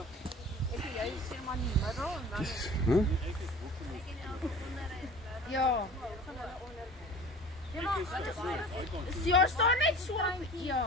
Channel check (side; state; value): both; normal; correlation 0.41